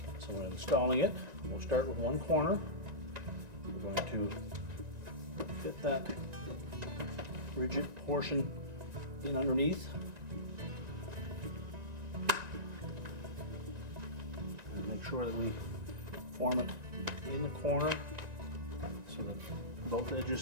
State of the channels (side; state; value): left; late; 1.9 ms